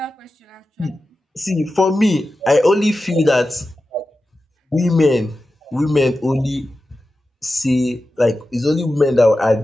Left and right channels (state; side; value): normal; both; correlation 0.93